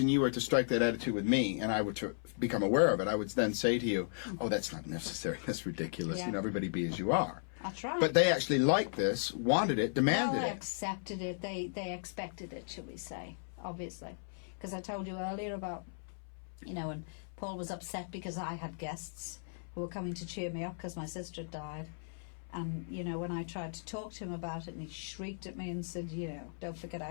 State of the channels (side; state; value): right; silent; 54 dB below the other